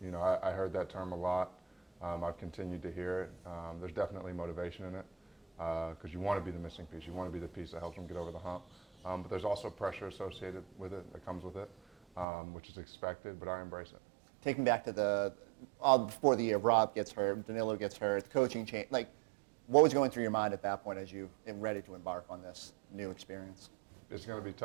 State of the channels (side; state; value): left; drops out; at 12.2 s